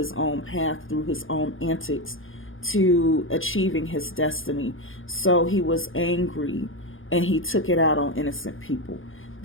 own path through his own antics to achieving his destiny. So he was angry and he took it out on innocent people.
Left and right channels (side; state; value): right; late; 0.58 ms